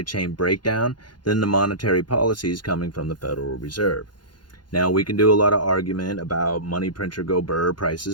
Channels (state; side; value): late; right; 0.71 ms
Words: chain breakdown than the monetary policies coming from the Federal Reserve. Now, we can do a lot of argument about money printer go burr,